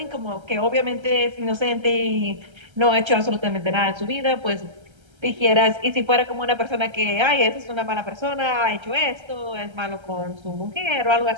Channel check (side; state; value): left; late; 1.3 ms